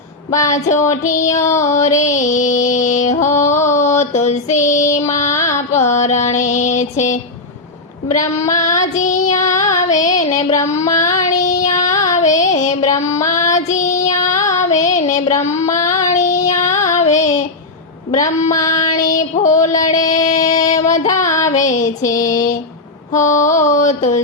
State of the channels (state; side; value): quieter; right; 3.2 dB